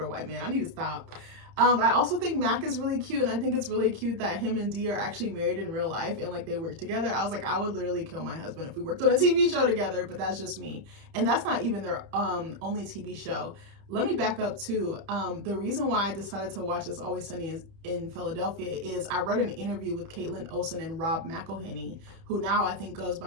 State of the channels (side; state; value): left; late; 31 ms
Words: white man. I need to stop. I also think Mac is really cute, and I think it's really cute that him and Dee are actually married in real life and like they work together. I was like, I would literally kill my husband if we worked on a TV show together, but that's just me. And that's not even their only TV show. let me back up too. The reason why I decided to watch It's Always Sunny in Philadelphia is I read an interview with Caitlin Olsen and Rob McElhenney, who now I think goes